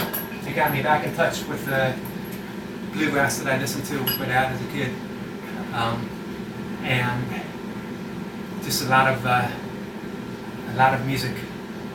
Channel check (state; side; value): identical; both; correlation 1.00